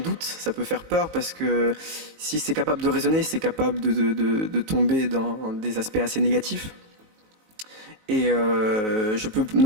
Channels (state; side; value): late; left; 19 ms